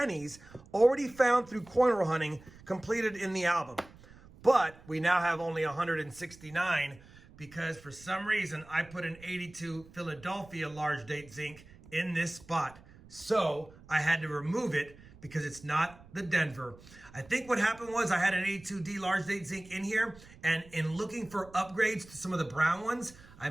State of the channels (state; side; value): noise; right; rumble, 22 dB below the sound